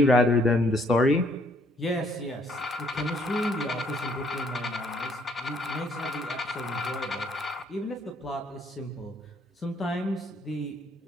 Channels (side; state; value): both; normal; correlation 0.65